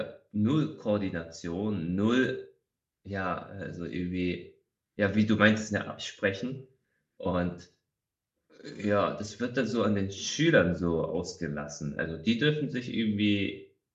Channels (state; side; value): identical; both; correlation 1.00